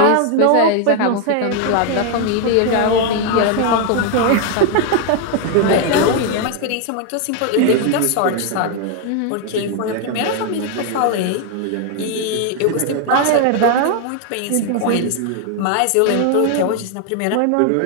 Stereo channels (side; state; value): both; different; correlation 0.01